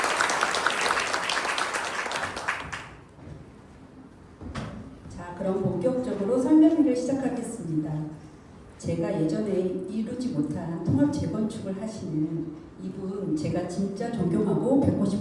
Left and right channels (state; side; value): identical; both; correlation 1.00